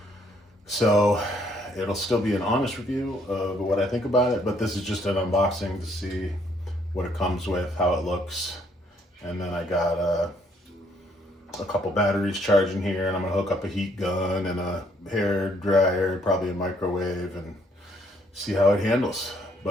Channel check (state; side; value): normal; both; correlation 0.67